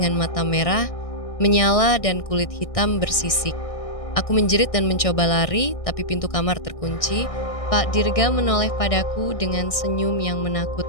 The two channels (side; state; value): right; late; 1.6 ms